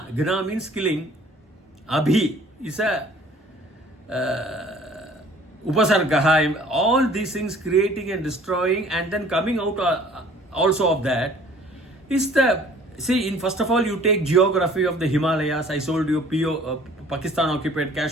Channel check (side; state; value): both; normal; correlation 0.52